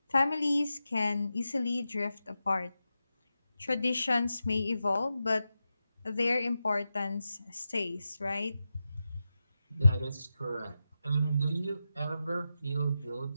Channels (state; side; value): inverted; both; correlation -0.91